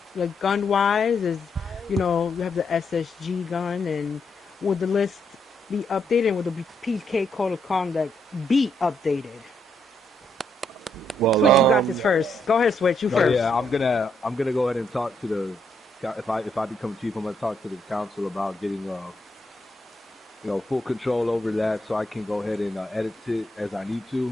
Like gun-wise, you know, you have the SSG gun, and would the list be updated? And would the PK code of conduct be updated? Well, Switch, you got this first. Go ahead, Switch. You first. Yeah, I'm gonna go ahead and talk to the. If I become chief, I'm gonna talk to the council about getting you know, full control over that, so I can go ahead and edit it as I need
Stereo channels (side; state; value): both; normal; correlation 0.76